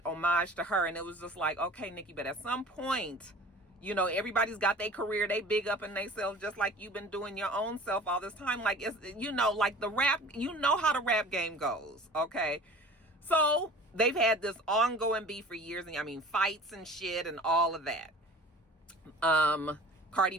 homage to her. And it was just like, okay, Nicki, but at some point, you know, everybody's got their career, they big up in themselves just like you've been doing your own self all this time. Like, it's, you know, like the rap, you know how the rap game goes, okay? So they've had this ongoing beef for years, and I mean, fights and shit and all of that. Cardi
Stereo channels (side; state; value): both; normal; correlation 0.42